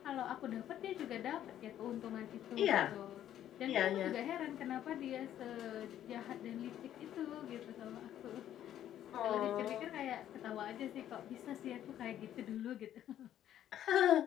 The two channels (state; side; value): quieter; right; 11.3 dB